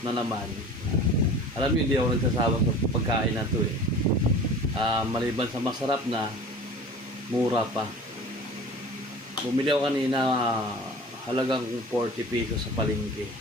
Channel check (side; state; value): both; normal; correlation 0.41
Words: na naman. Alam niyo, hindi ako nagsasawa sa pagkain na to eh. Maliban sa masarap na, mura pa. Bumili ako kanina, halagang 40 pesos sa palengke.